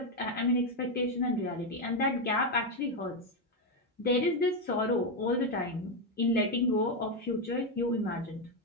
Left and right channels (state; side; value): normal; both; correlation 0.06